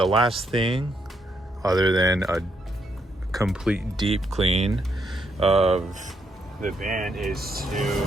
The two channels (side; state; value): both; normal; correlation 0.76